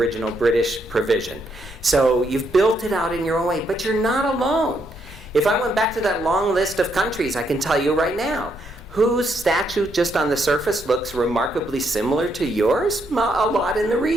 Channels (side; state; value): both; normal; correlation 0.76